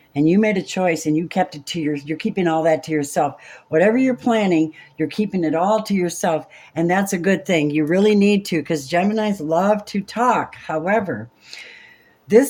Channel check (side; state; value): both; identical; correlation 1.00